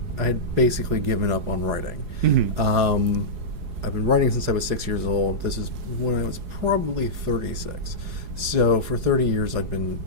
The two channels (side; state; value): left; late; 4.8 ms